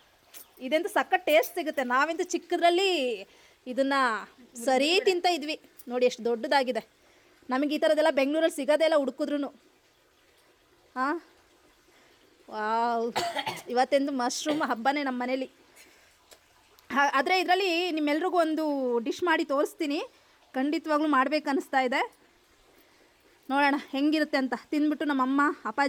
ಇದಂತೂ ಸಖತ್ ಟೇಸ್ಟ್ ಸಿಗುತ್ತೆ. ನಾವಂತೂ ಚಿಕ್ಕದ್ರಲ್ಲಿ ಇದನ್ನು ಸರಿ ತಿಂತ ಇದ್ವಿ. ನೋಡಿ ಎಷ್ಟು ದೊಡ್ಡದಾಗಿದೆ. ನಮಗೆ ಈ ಥರದ್ದೆಲ್ಲ ಬೆಂಗಳೂರಲ್ಲಿ ಸಿಗೋದೇ ಇಲ್ಲ ಹುಡುಕಿದ್ರು. ಹಾಂ, ವಾವ್, ಇವತ್ತೆಂದು ಮಶ್ರೂಮ್ ಹಬ್ಬನೇ ನಮ್ಮ ಮನೇಲಿ. ಆದರೆ ಇದರಲ್ಲಿ ನಿಮ್ಮೆಲ್ರಿಗೂ ಒಂದು ಡಿಶ್ ಮಾಡಿ ತೋರಿಸ್ತೀನಿ. ಖಂಡಿತವಾಗ್ಲೂ ಮಾಡಬೇಕನ್ನಿಸ್ತಾ ಇದೆ. ನೋಡೋಣ ಹೆಂಗಿರುತ್ತೆ ಅಂತ. ತಿಂದ್ಬಿಟ್ಟು ನಮ್ಮಮ್ಮ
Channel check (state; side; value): identical; both; correlation 1.00